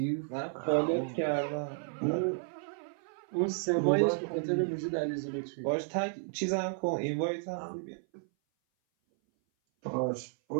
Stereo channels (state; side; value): silent; left; 56 dB below the other